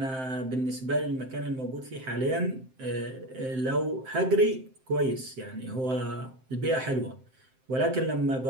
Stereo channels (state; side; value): late; left; 7.7 ms